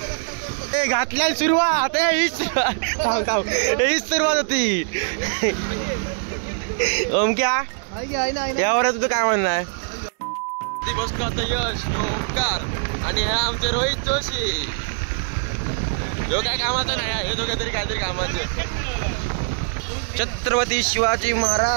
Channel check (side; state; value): left; silent; digital silence